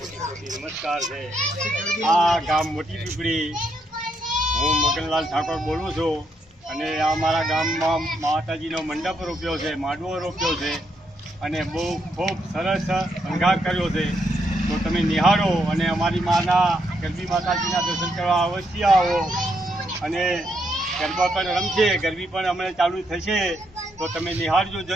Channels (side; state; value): both; normal; correlation 0.77